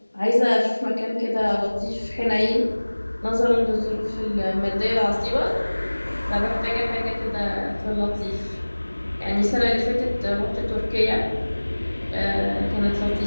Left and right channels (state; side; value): inverted; both; correlation -1.00